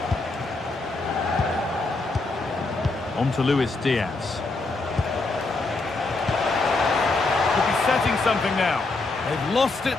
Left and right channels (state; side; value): quieter; right; 3.4 dB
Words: On to Luis Diaz. Could be setting something now. They've lost it